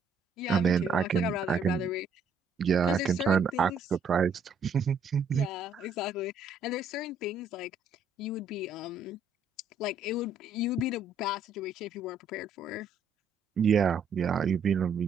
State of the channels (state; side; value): quieter; left; 3.7 dB